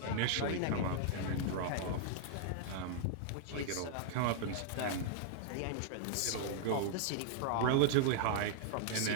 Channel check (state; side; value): different; both; correlation -0.01